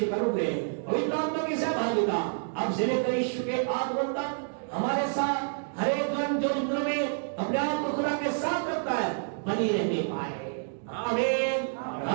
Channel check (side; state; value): left; silent; digital silence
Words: का अनुग्रह, पवित्र आत्मा की सहभागिता अब से लेकर यीशु के आगमन तक हमारे साथ हर एक जन जो इंद्र में अपने आप को खुदा के साथ रखता है बनी रहने पाए। आमीन,